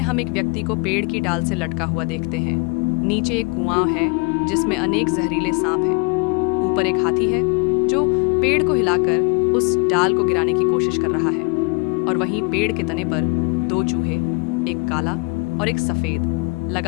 हम एक व्यक्ति को पेड़ की डाल से लटका हुआ देखते हैं। नीचे एक कुआं है जिसमें अनेक जहरीले सांप हैं। ऊपर एक हाथी है जो पेड़ को हिलाकर उस डाल को गिराने की कोशिश कर रहा है। और वहीं पेड़ के तने पर दो चूहे, एक काला और एक सफेद,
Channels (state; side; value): quieter; right; 31.3 dB